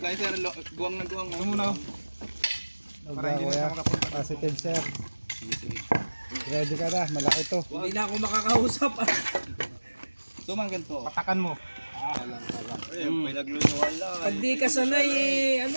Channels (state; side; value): inverted; both; correlation -1.00